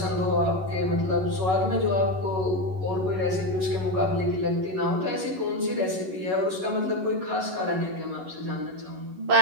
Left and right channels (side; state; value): left; late; 11 ms